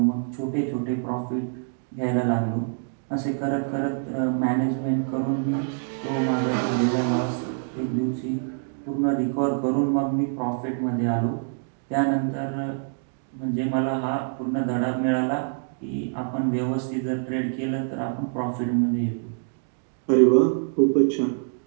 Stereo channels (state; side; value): silent; left; digital silence